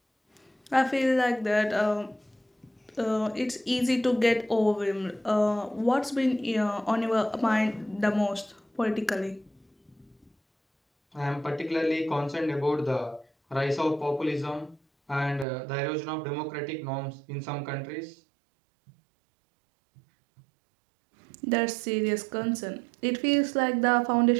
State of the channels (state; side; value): drops out; left; at 15.5 s